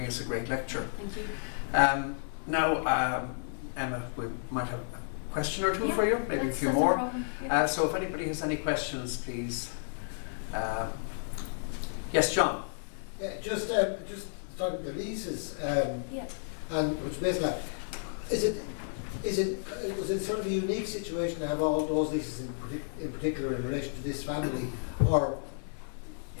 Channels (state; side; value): silent; right; digital silence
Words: us a great lecture. Thank you. Now, Emma, we might have a question or two for you, maybe a few more. So if anybody has any questions, please. Yes, John. Yeah, just starting the leases, and which basically, was it sort of a unique situation to have all those leases in particular in relation to this family, or